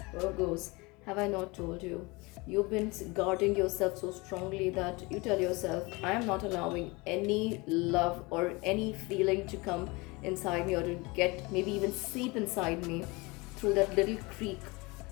Virgos, have I not told you? You've been guarding yourself so strongly that you tell yourself, I am not allowing any love or any feeling to come inside me or to get maybe even seep inside me through that little creak.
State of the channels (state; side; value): quieter; right; 25.3 dB